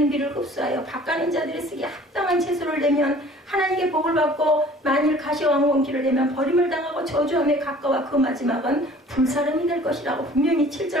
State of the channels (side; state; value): both; normal; correlation 0.50